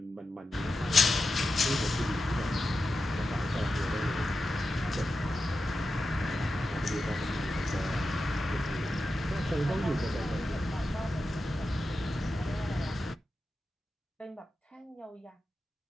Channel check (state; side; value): normal; both; correlation 0.90